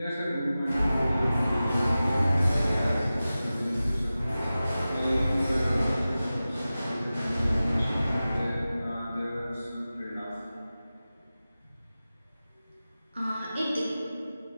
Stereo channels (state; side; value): inverted; both; correlation -0.95